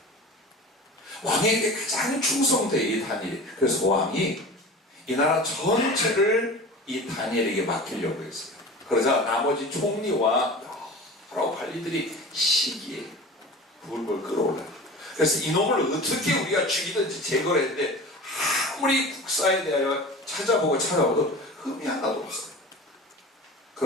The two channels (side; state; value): both; normal; correlation 0.36